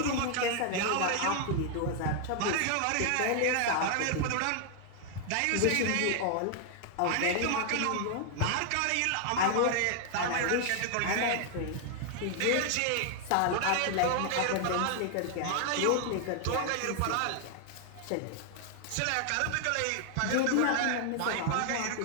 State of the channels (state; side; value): different; both; correlation 0.00